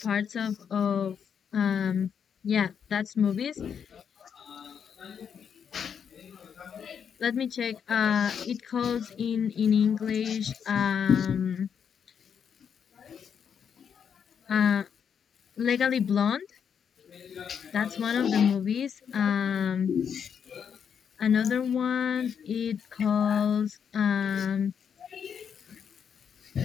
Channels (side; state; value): right; quieter; 7.5 dB